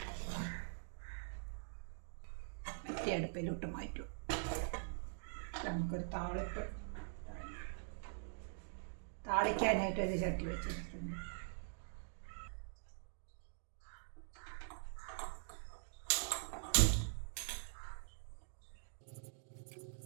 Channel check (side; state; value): left; silent; digital silence